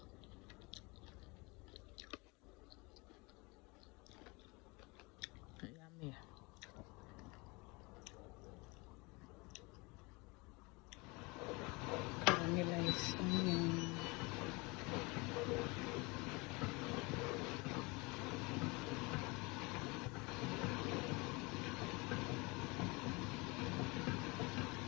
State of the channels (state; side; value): quieter; right; 26.5 dB